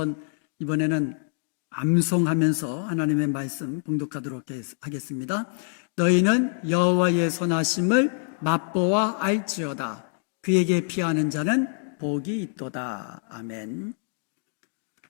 이번에는 암송하면서 하나님의 말씀 봉독하도록 하겠습니다. 너희는 여호와의 선하심을 맛보아 알지어다. 그에게 피하는 자는 복이 있도다. 아멘.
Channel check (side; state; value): right; silent; digital silence